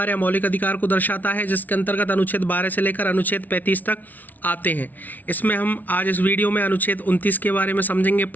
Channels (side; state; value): right; late; 0.080 ms